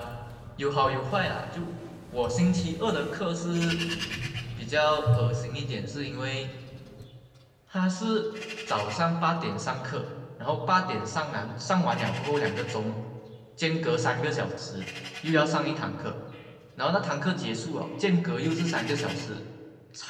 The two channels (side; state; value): both; identical; correlation 1.00